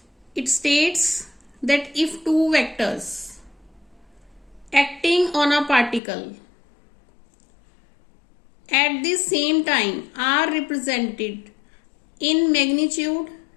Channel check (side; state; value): right; drops out; at 6.0 s